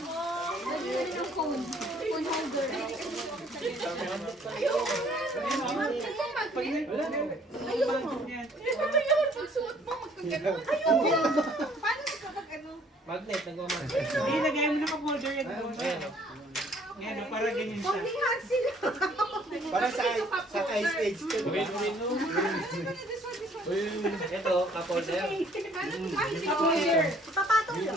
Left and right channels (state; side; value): normal; both; correlation 0.60